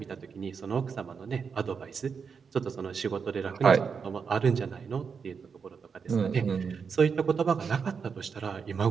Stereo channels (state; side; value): quieter; left; 6.0 dB